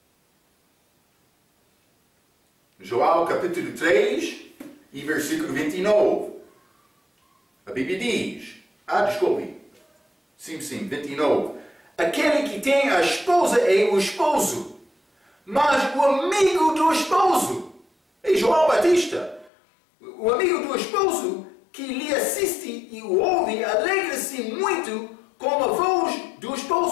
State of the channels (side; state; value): right; drops out; at 19.5 s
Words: João capítulo 3 e versículo 29. A Bíblia diz, desculpe. Sim, 29. Aquele que tem a esposa é o esposo, mas o amigo do esposo é João Batista. O amigo do esposo que lhe assiste e o ouve alegra-se muito com a voz do